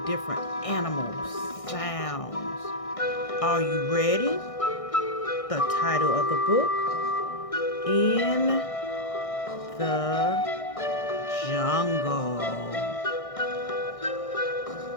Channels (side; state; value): right; late; 1.6 ms